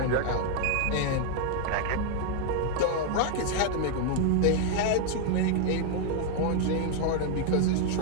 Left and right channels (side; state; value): both; different; correlation 0.00